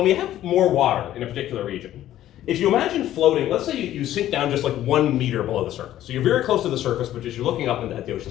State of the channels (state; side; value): quieter; right; 12.8 dB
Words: we have more water in a particular region, if you imagine floating, let's say you sink down just like 1 meter below the surface. So you're very close to the surface, but you're looking up at the